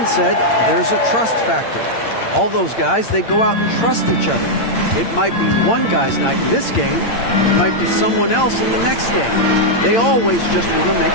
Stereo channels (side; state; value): right; late; 8.8 ms